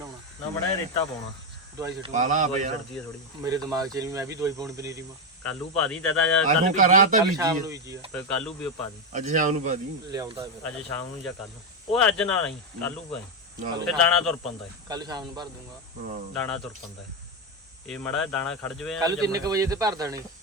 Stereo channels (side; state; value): both; normal; correlation 0.08